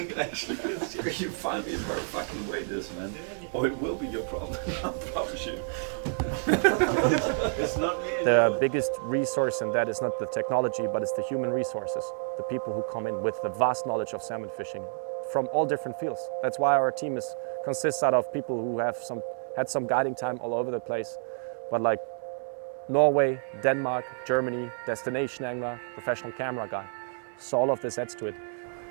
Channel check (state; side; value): silent; left; digital silence